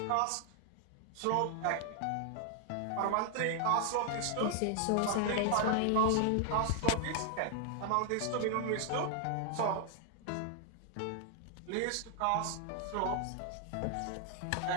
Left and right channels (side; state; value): both; different; correlation 0.00